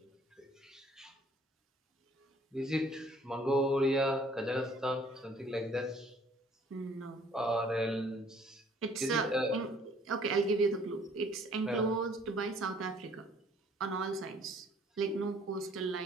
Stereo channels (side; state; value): both; normal; correlation 0.58